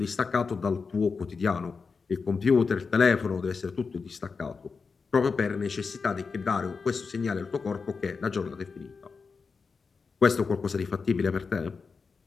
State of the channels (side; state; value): right; quieter; 5.0 dB